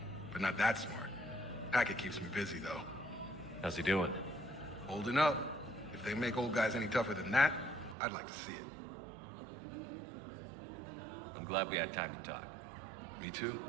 But not that smart. Hackett keeps me busy, though. How's he doing? Holding up. If they make old guys any tougher than that, I'd like to see it. I'm glad we had time to talk. Me too.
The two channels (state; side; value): drops out; left; at 8.0 s